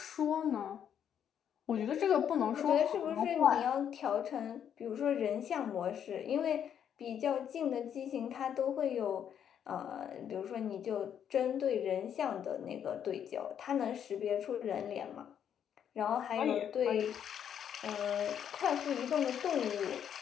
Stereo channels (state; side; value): quieter; right; 8.9 dB